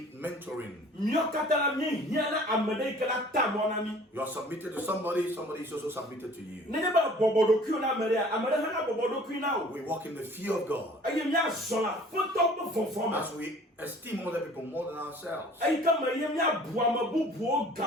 mentoring. You are submitted to somebody, somebody is also submitted to you. We walk in the fear of God as we esteem other people more than ourselves. We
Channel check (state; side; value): normal; both; correlation 0.50